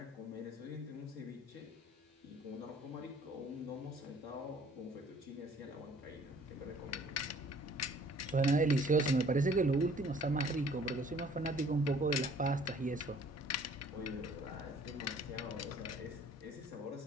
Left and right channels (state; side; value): normal; both; correlation 0.55